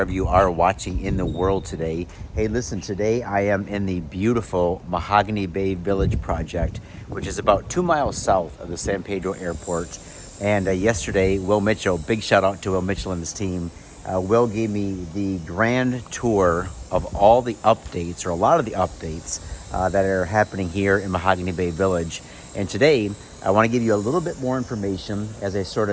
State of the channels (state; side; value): identical; both; correlation 1.00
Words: you are watching in the world today. Hey, listen, today I am in the beautiful Mahogany Bay Village project, which is about 2 miles south of the San Pedro Airport. And yesterday, Will Mitchell, big shout out to Will Mitchell and his team, Will gave me the grand tour of all the updates, or a lot of the updates that are happening here in Mahogany Bay Village. And today, I want to give you a little bit more information as I sort